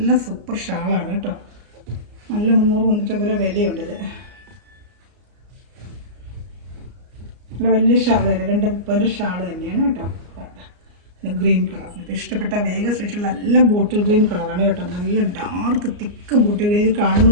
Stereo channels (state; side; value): late; left; 34 ms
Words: സൂപ്പർ ഷാളാണ് കേട്ടോ. നല്ല 300-350 വിലയുണ്ട്. ഇത് നല്ല വലിയ ഷാൾ തന്നെ. 230 ഷാൾ തന്നെയാണ് കേട്ടോ. Green colour. ഇപ്പോൾ ഇഷ്ടപ്പെട്ട വേഗം സ്പെഷ്യൽ നല്ല ബോട്ടിൽ ഗ്രീൻ കളറാണ് കേട്ടോ. നല്ല ഡാർക്ക് തിക്ക് ബോട്ടിൽ ഗ്രീൻ. ഇത് കാണുന്ന